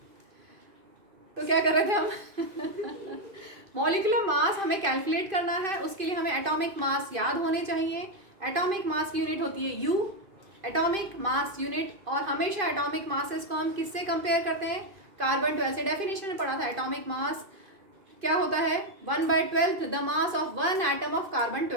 तो क्या कर रहे थे हम? मॉलिक्यूलर मास हमें कैलकुलेट करना है, उसके लिए हमें एटॉमिक मास याद होने चाहिए। एटॉमिक मास की यूनिट होती है यू, एटॉमिक मास यूनिट। और हमेशा एटॉमिक मासेस को हम किससे कंपेयर करते हैं? कार्बन 12 से। डेफिनेशन में पढ़ा था, एटॉमिक मास क्या होता है? 1/12 the mass of one atom of carbon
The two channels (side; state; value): left; late; 2.5 ms